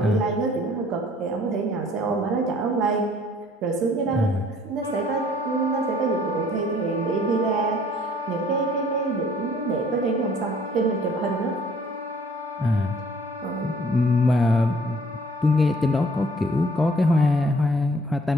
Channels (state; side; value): normal; both; correlation 0.57